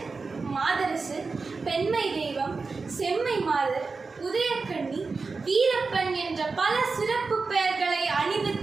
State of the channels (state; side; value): quieter; left; 4.3 dB